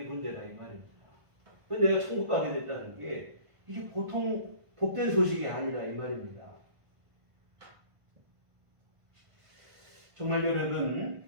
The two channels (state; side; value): late; left; 1.5 ms